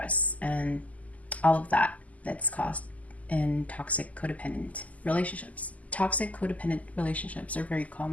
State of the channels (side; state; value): right; late; 0.074 ms